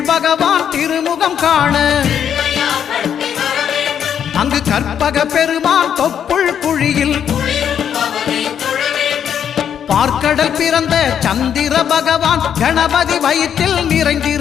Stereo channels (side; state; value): right; quieter; 8.7 dB